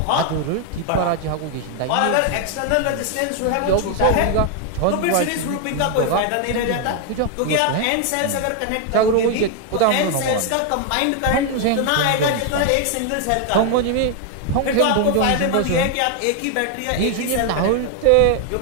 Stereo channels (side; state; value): both; different; correlation 0.00